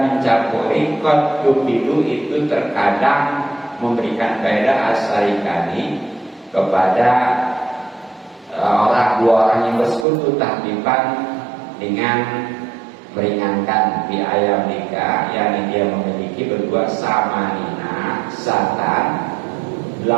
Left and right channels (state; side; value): drops out; left; at 10.1 s